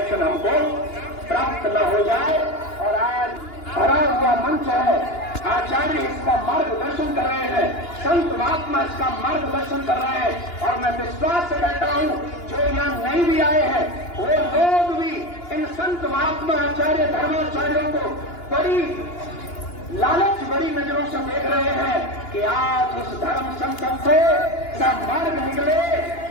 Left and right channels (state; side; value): late; right; 2.9 ms